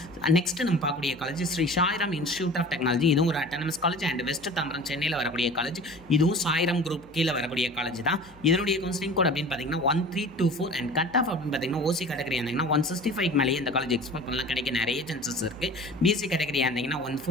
நெக்ஸ்ட் நம்ம பார்க்கக்கூடிய college Sri Sairam institute of technology. இதுவும் ஒரு autonomous college and west Tambaram சென்னையில் வரக்கூடிய காலேஜ். இதுவும் சாய்ராம் குரூப் கீழே வரக்கூடிய காலேஜ் தான். இதனுடைய கவுன்சிலிங் கோட் அப்படின்னு பார்த்தீங்கன்னா 1324. அண்ட் கட் ஆஃப் அப்படின்னு பார்த்தீங்கன்னா ஓசி கேட்டகரி இருந்தீங்கன்னா 165க்கு மேலேயே இந்த காலேஜ் எக்ஸ்பெக்ட் பண்ணலாம். கிடைக்க நிறைய சான்சஸ் இருக்குது. பிசி கேட்டகரி இருந்தீங்கன்னா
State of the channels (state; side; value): noise; left; hum, 25 dB below the sound